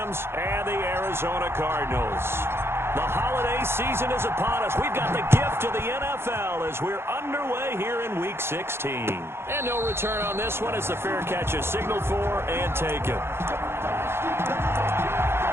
and the Arizona Cardinals. The holiday season is upon us. We've got the gift of the NFL as we're underway here in Week 16. And no return on this one as the fair catch is signaled for and taken.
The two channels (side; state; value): left; late; 0.12 ms